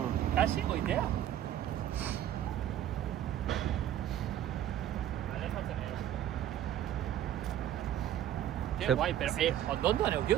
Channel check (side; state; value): left; quieter; 11.5 dB